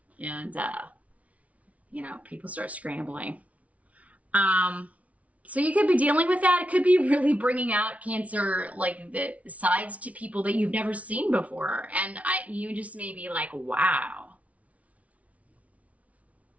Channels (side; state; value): left; late; 0.067 ms